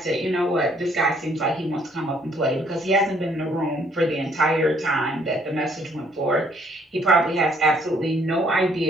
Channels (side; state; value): both; normal; correlation 0.65